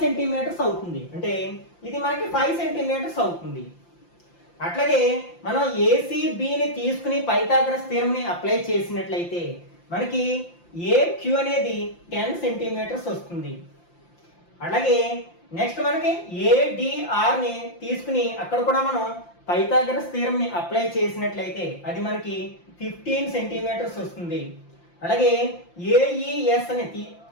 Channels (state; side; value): late; right; 5.8 ms